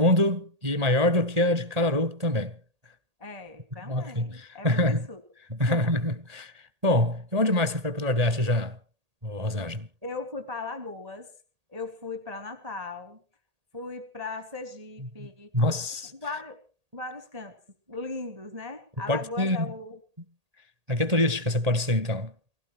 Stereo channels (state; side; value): late; left; 1.8 ms